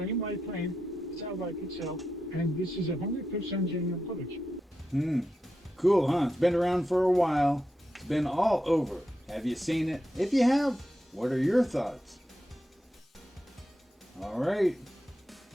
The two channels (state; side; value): normal; both; correlation 0.87